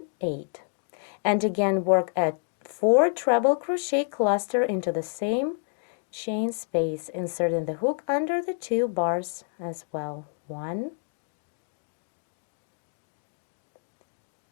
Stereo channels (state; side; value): silent; right; digital silence